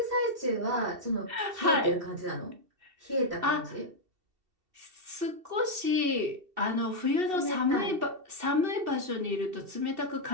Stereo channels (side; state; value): left; late; 2.7 ms